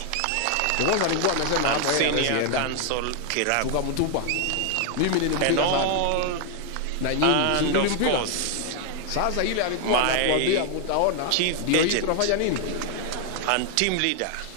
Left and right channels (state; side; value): different; both; correlation 0.00